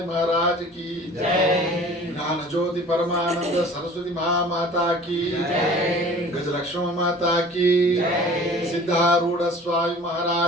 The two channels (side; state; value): both; normal; correlation 0.46